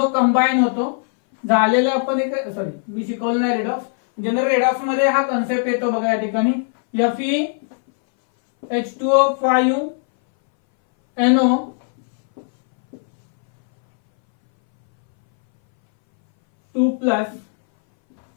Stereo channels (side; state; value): right; silent; 62 dB below the other